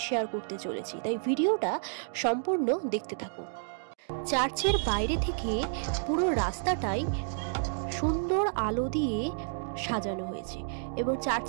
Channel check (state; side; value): silent; left; digital silence